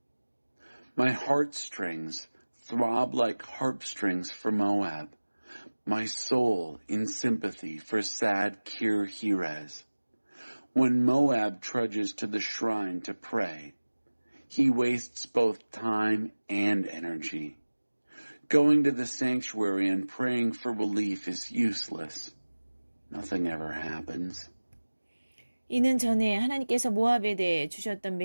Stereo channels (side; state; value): both; inverted; correlation -1.00